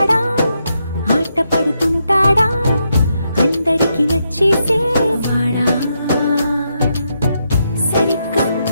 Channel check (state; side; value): inverted; both; correlation -0.81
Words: ఆట పడుతుంటాడా అందరికి నచ్చేసేవాడా సరిగ్గా